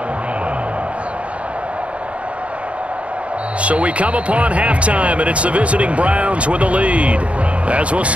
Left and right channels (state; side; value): late; left; 0.063 ms